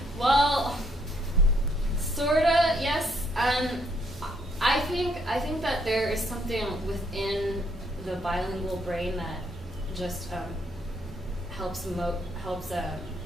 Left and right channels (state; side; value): normal; both; correlation 0.71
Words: Well, sorta, yes. I think that there is something within the bilingual brain that just helps